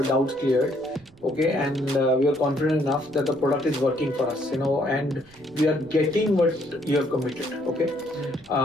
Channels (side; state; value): right; noise; rumble, 26 dB below the sound